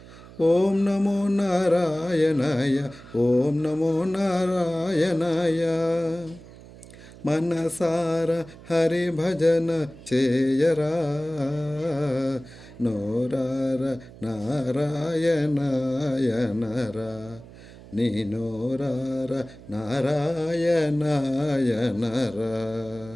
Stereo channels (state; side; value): noise; right; hum, 19 dB below the sound